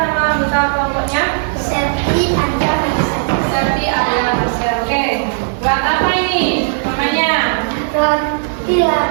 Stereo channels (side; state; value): left; silent; digital silence